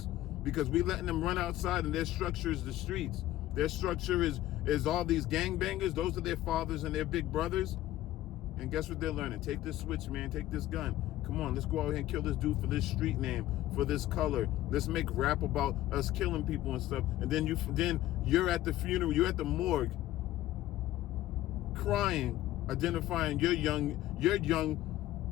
because we letting them run outside and their structure is the streets. Their structure is all these gangbangers. Those are their fathers and their big brothers. And guess what they're learning? Take this switch, man. Take this gun. Come on, let's go out here and kill this dude for this street name, for this color. Let's make rap about us killing people and stuff. And then you're at the funeral, you're at the morgue, crying, identifying your young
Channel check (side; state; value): right; quieter; 14.6 dB